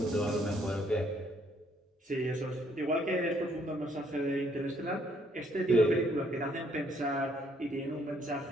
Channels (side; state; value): both; normal; correlation 0.67